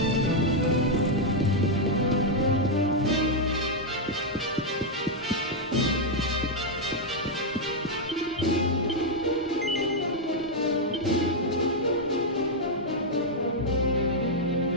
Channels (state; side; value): normal; both; correlation -0.02